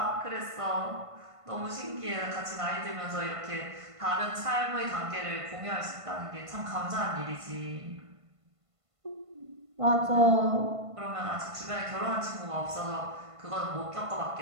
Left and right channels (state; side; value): late; left; 1.5 ms